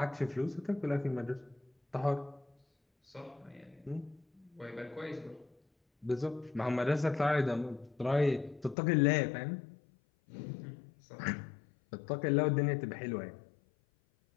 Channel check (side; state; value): right; drops out; at 8.8 s